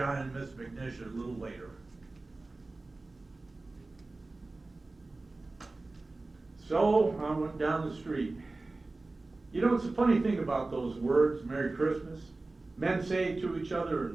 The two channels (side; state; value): left; quieter; 3.2 dB